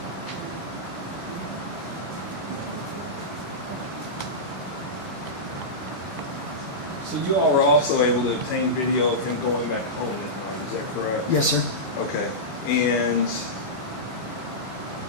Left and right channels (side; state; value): right; late; 14 ms